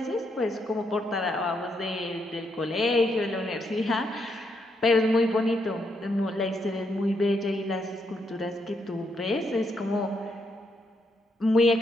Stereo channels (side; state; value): both; normal; correlation 0.78